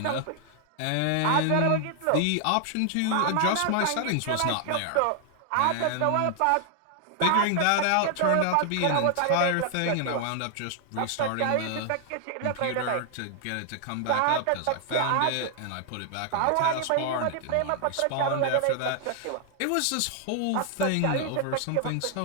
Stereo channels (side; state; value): both; different; correlation 0.00